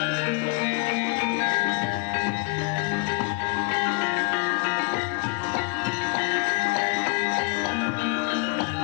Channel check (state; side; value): quieter; right; 32.9 dB